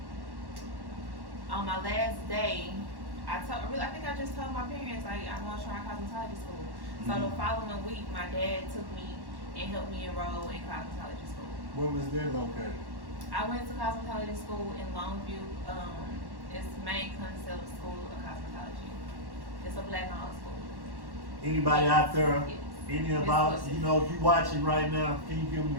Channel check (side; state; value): left; late; 1.1 ms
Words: on my last day, I think I just told my parents, like, I'm going to try cosmetology school. So the Mhm. following week, my dad took me and helped me enroll in cosmetology school. Where was that located? I went to cosmetology school in Longview. It's Main Concept School of Cosmetology. It's a black-owned school. Anybody out there? Yes. Any It's about, exclusive. you know, if you watching right now, can you give